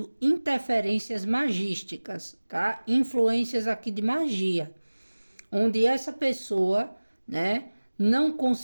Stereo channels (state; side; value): inverted; both; correlation -1.00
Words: interferências magísticas, tá? Influências aqui de magia, onde essa pessoa, né, não